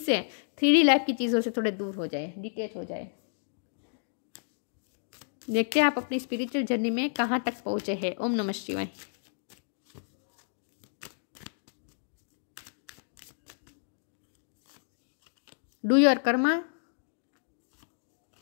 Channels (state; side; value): silent; right; digital silence